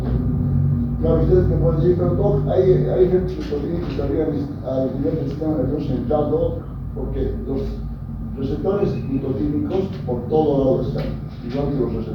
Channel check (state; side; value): identical; both; correlation 1.00